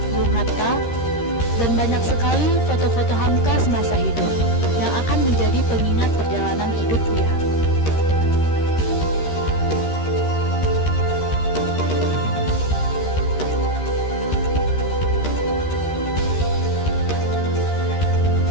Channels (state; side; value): late; right; 13 ms